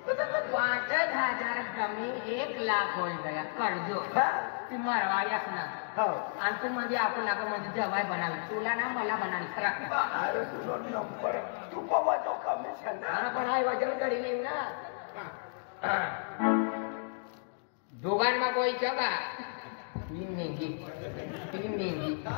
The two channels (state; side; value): silent; right; digital silence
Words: 5,000 कमी 1 लाख होई गया कर्ज हा ती मरवाई असणार हो आणि तू मध्ये आपण मध्ये जवाई बनावी तुला ना मला बनावी सरा अरे तुझा नंबर तू बाबा तो कमिशन पण हाय वजन करी येईल ना दोघांना कोई जगा 3 मेंगी